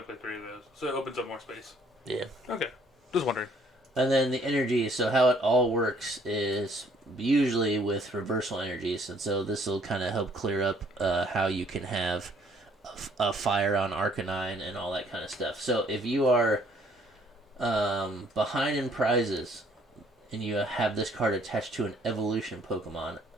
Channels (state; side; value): normal; both; correlation 0.62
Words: to play 3 of those. So it opens up more space. Yeah. Okay. Just wondering. And then the energy, so how it all works is usually with reversal energies, and so this will kind of help clear up how you can have a fire on Arcanine and all that kind of stuff. So if you are behind in prizes and you have this card attached to an evolution Pokemon